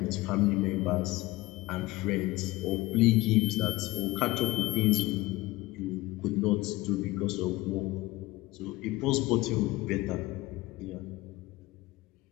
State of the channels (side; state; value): right; quieter; 19.4 dB